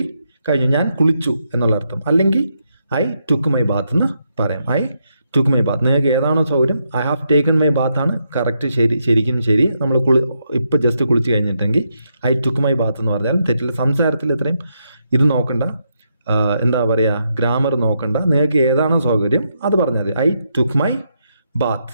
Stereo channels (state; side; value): inverted; both; correlation -0.80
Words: ഞാൻ കുളിച്ചു എന്നുള്ള അർത്ഥം. അല്ലെങ്കിൽ ഐ ടുക്ക് മൈ ബാത്ത് എന്ന് പറയാം. I took my Baat. നിങ്ങൾക്ക് ഏതാണോ സൗകര്യം. I have taken my Baat ആണ് കറക്റ്റ്, ശരിക്കും ശരി. നമ്മൾ ഇപ്പം ജസ്റ്റ് കുളിച്ച് കഴിഞ്ഞിട്ടെങ്കിൽ ഐ ടുക്ക് മൈ ബാത്ത് എന്ന് പറഞ്ഞാൽ തെറ്റില്ല. സംസാരത്തിൽ ഇത്രയും ഇത് നോക്കണ്ട, എന്താ പറയുക, ഗ്രാമർ നോക്കണ്ട. നിങ്ങൾക്ക് ഏതാണോ സൗകര്യം അത് പറഞ്ഞാൽ മതി. I took my bath.